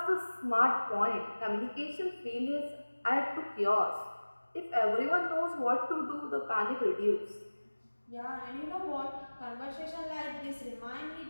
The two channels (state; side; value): inverted; both; correlation -1.00